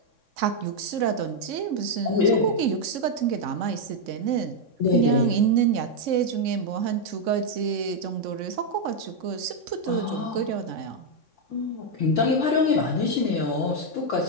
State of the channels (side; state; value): left; late; 3.6 ms